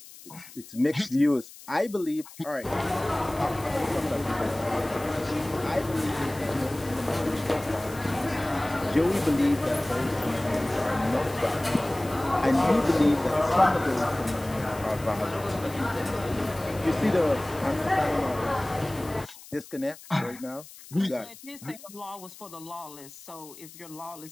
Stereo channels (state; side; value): noise; left; hiss, 18 dB below the sound